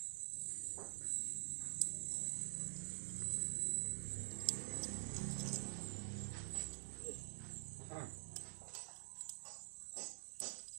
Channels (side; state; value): left; silent; digital silence